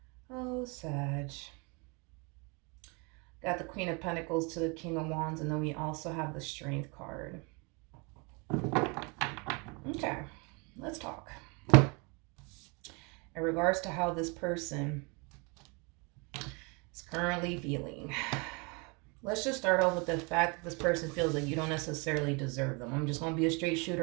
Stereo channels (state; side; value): quieter; left; 30.9 dB